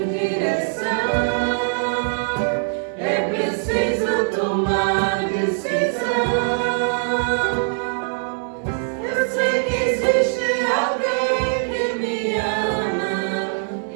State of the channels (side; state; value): left; silent; 62 dB below the other